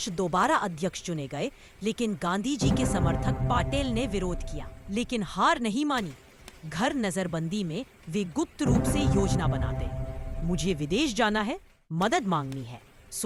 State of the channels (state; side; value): identical; both; correlation 1.00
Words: दोबारा अध्यक्ष चुने गए, लेकिन गांधी जी के समर्थक पाटेल ने विरोध किया। लेकिन हार नहीं मानी। घर नजरबंदी में वे गुप्त रूप से योजना बनाते। मुझे विदेश जाना है, मदद मांगनी है,